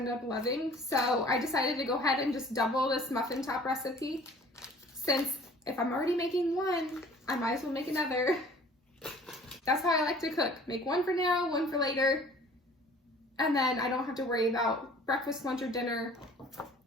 up loving. So I decided to go ahead and just double this muffin top recipe, since if I'm already making one, I might as well make another. That's how I like to cook. Make one for now, one for later, and then I don't have to worry about breakfast, lunch, or dinner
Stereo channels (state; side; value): normal; both; correlation 0.50